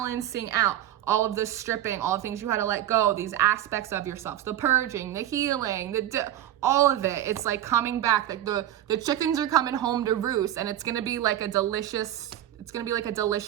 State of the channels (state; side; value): quieter; left; 12.1 dB